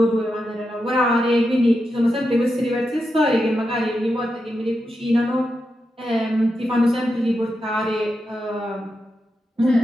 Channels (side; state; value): both; normal; correlation 0.87